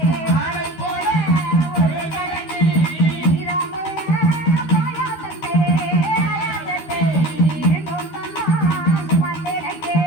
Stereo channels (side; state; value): right; late; 13 ms